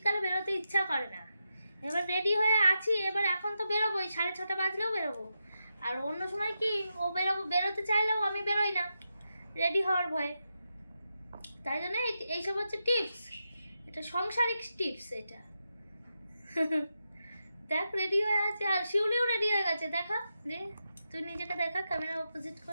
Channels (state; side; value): inverted; both; correlation -0.87